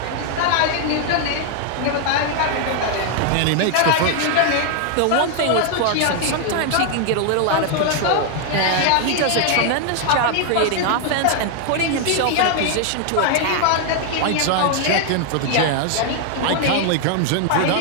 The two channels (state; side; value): different; both; correlation 0.00